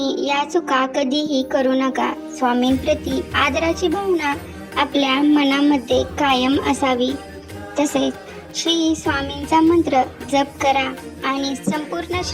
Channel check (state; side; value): identical; both; correlation 1.00